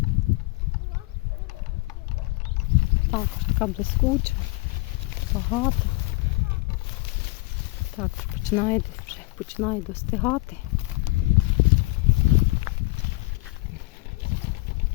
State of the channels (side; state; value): right; quieter; 23.8 dB